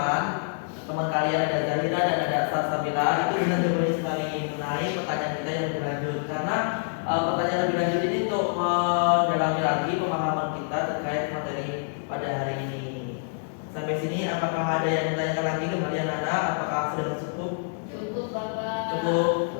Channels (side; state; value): right; silent; digital silence